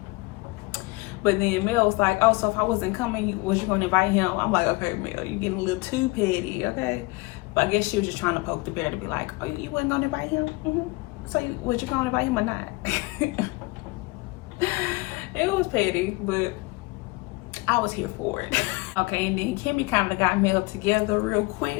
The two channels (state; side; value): quieter; right; 24.1 dB